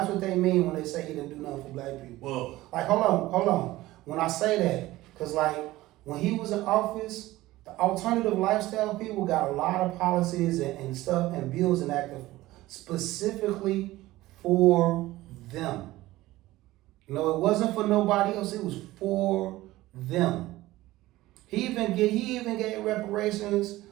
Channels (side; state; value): left; quieter; 17.3 dB